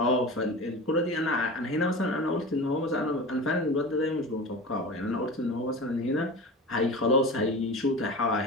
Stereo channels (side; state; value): both; normal; correlation 0.31